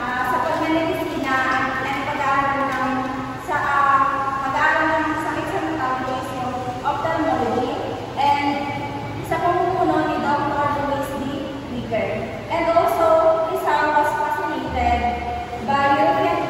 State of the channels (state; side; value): identical; both; correlation 1.00